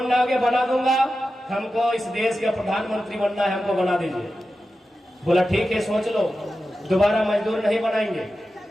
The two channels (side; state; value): both; normal; correlation 0.92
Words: होगा बना दूंगा, हमको इस देश का प्रधानमंत्री बनना है, हमको बना दीजिए। बोला ठीक है, सोच लो, दोबारा मजदूर नहीं बनाएंगे।